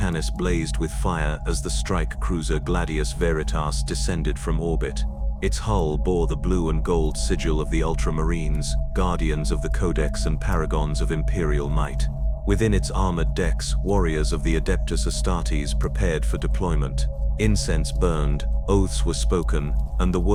blazed with fire as the strike cruiser Gladius Veritas descended from orbit. Its hull bore the blue and gold sigil of the Ultramarines, guardians of the Codex and paragons of Imperial might. Within its armored decks, warriors of the Adeptus Astartes prepared for deployment. Incense burned, oaths were spoken, and the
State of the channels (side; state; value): both; identical; correlation 1.00